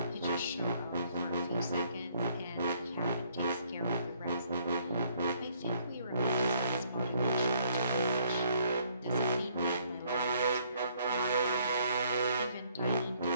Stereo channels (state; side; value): inverted; both; correlation -0.65